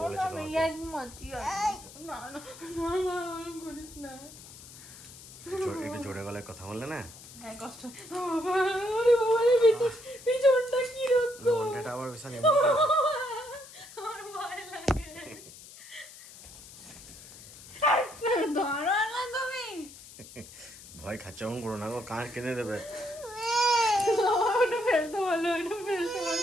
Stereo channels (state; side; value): noise; left; hiss, 17 dB below the sound